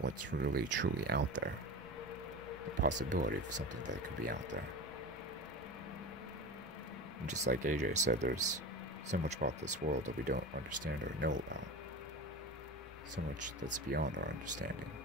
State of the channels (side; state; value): both; normal; correlation 0.29